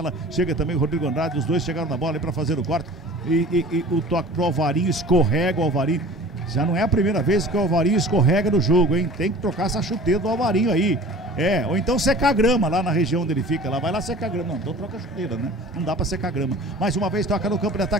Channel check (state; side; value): normal; both; correlation 0.43